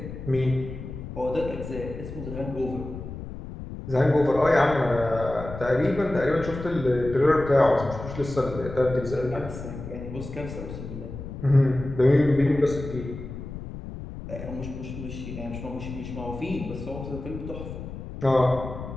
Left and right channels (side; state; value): left; noise; rumble, 10 dB below the sound